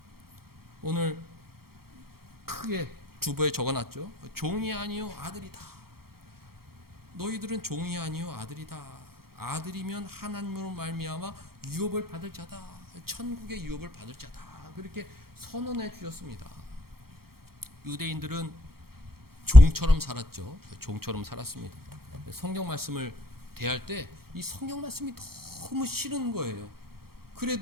오늘 크게 주보에 적어놨죠. 종이 아니요 아들이다. 너희들은 종이 아니요 아들이다. 아들이면 하나님으로 말미암아 유업을 받을 자다. 천국의 유업을 받을 자다. 그렇게 선언해 주셨습니다. 유대인들은 종처럼 살았죠. 종처럼 살았습니다. 성경 말씀을 대할 때 이 성경 말씀이 너무 싫은 거예요.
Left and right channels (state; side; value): late; left; 0.94 ms